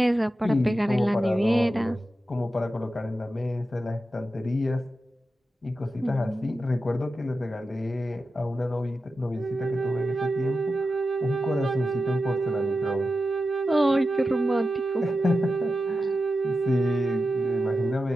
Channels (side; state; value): both; normal; correlation 0.91